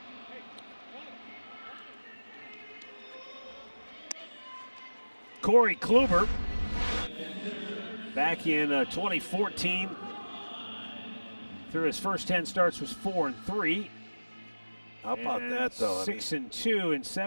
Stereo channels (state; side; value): inverted; both; correlation -1.00